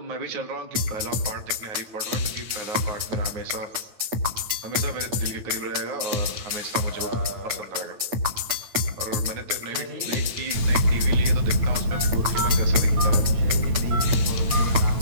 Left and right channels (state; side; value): late; left; 9.0 ms